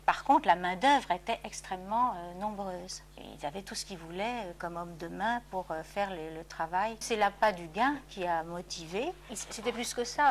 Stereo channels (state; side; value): identical; both; correlation 1.00